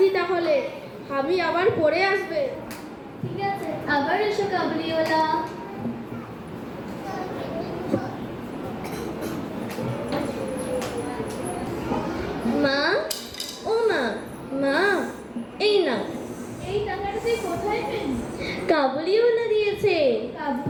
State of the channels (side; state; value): both; identical; correlation 1.00